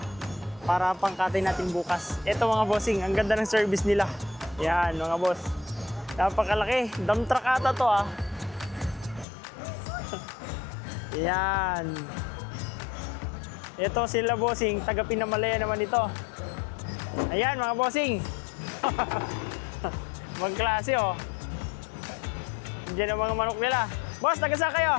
para pangkatay natin bukas. Ito mga bossing, ang ganda ng service nila. Yan mga boss. Napakalaki. Dump truck ata to ah. Yan. Ito sila bossing, taga Pinamalaya naman ito. Ayan mga bossing. Magklase oh. Diyan ang mga manok nila. Boss, taga saan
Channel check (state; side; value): drops out; right; at 9.2 s